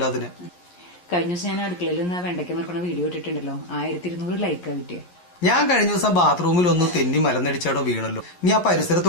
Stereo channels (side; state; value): right; late; 11 ms